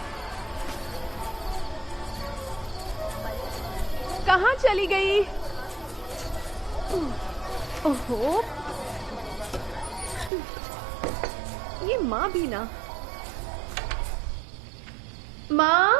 कहाँ चली गई? ओहो, ये माँ भी ना। माँ,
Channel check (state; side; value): drops out; left; at 10.3 s